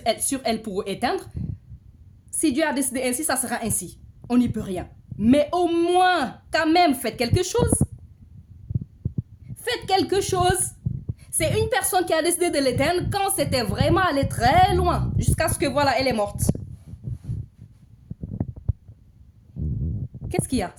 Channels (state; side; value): identical; both; correlation 1.00